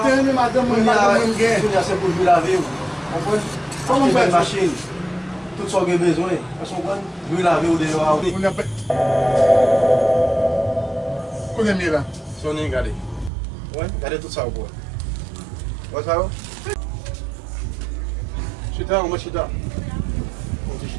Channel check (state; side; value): drops out; left; at 13.3 s